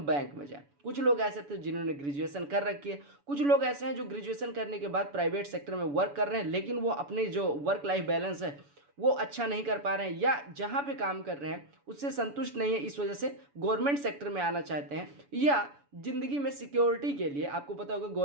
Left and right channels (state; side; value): late; left; 7.0 ms